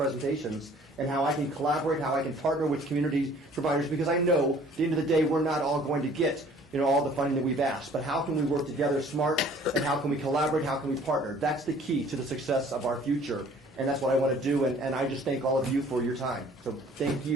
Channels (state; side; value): normal; both; correlation 0.54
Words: and how I can collaborate, how I can partner with community providers, because I know at the end of the day we're not all going to get all the funding that we've asked, but how can we work together smart, and how can we collaborate, how can we partner? That's the key to the success of our future, and that's what I want to do, and I just thank all of you for your time. So thank